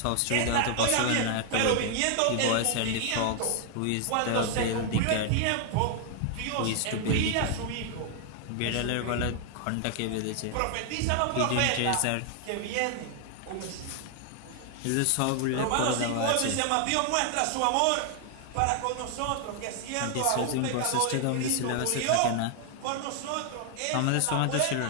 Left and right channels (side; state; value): both; different; correlation 0.00